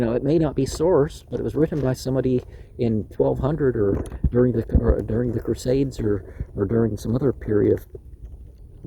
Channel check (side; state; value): both; identical; correlation 1.00